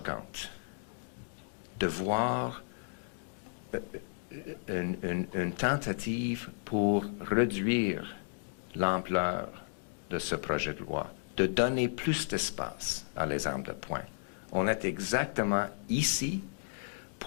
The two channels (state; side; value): silent; right; digital silence